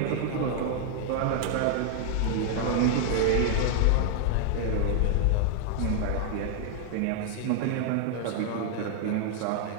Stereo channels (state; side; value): different; both; correlation 0.00